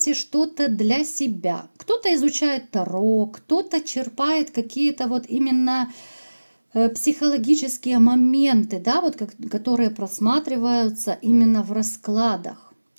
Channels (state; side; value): inverted; both; correlation -1.00